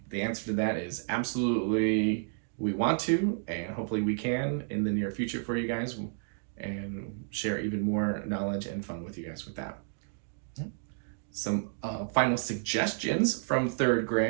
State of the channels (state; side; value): silent; left; digital silence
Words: the answer to that is absolutely, we want to, and hopefully we can in the near future for you guys, and share even more knowledge and fun with you guys with that. Some final suggestions from 3rd